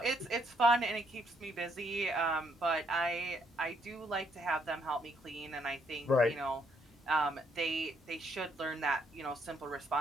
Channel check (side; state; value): both; normal; correlation 0.71